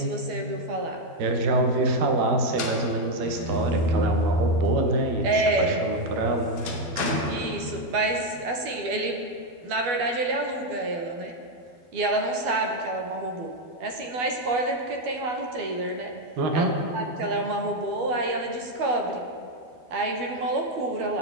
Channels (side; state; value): left; late; 12 ms